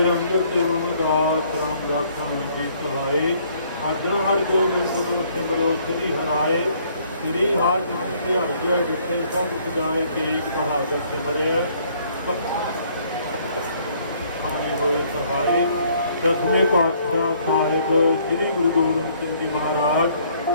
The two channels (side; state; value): both; inverted; correlation -0.63